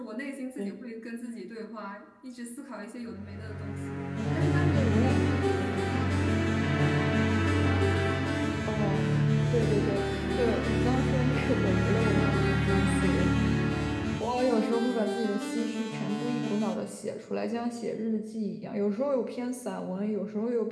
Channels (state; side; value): identical; both; correlation 1.00